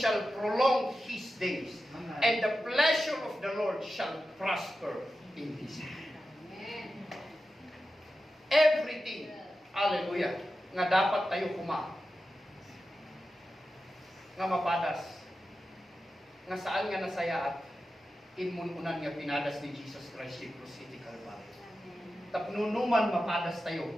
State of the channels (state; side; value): normal; both; correlation 0.92